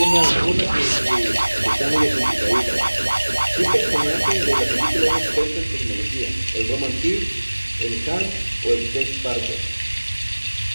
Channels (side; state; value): both; inverted; correlation -1.00